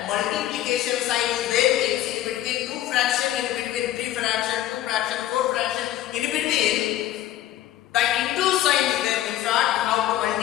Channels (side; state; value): right; quieter; 13.4 dB